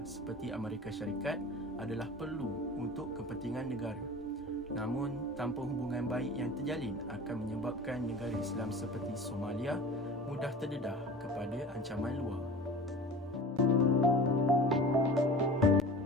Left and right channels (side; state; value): both; normal; correlation 0.38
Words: seperti Amerika Syarikat adalah perlu untuk kepentingan negara. Namun, tanpa hubungan baik yang terjalin akan menyebabkan negara Islam seperti Somalia mudah terdedah kepada ancaman luar.